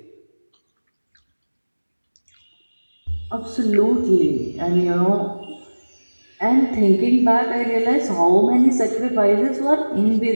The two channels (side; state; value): both; inverted; correlation -1.00